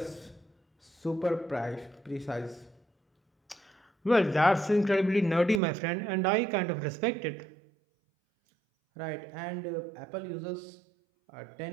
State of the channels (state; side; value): drops out; left; at 5.6 s